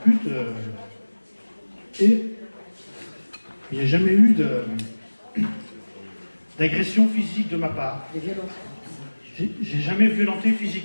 Et il n'y a jamais eu d'agression physique de ma part. Des violences. J'ai jamais violenté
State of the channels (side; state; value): both; inverted; correlation -1.00